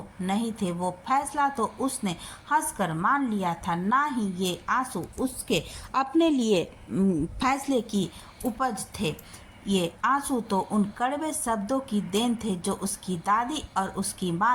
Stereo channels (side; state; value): both; identical; correlation 1.00